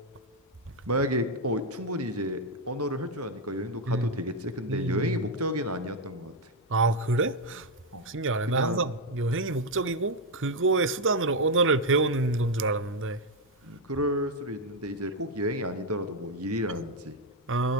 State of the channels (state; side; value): normal; both; correlation 0.02